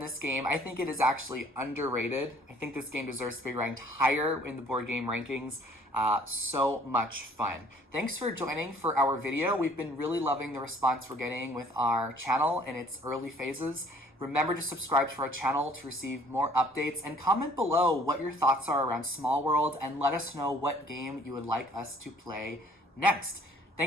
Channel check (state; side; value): normal; both; correlation 0.57